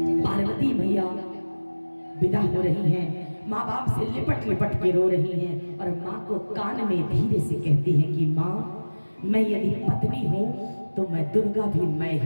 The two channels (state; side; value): inverted; both; correlation -1.00